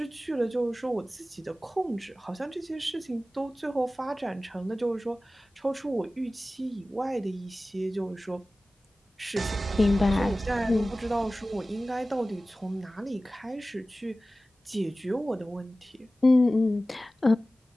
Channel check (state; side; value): normal; both; correlation 0.96